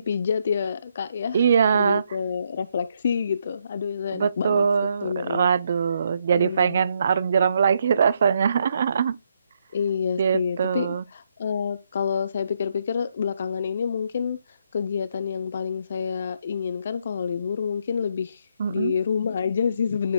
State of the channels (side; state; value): both; inverted; correlation -0.76